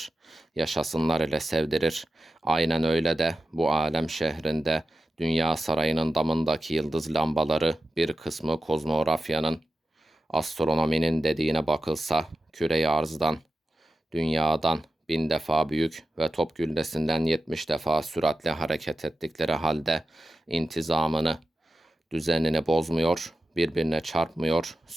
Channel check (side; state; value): both; normal; correlation 0.93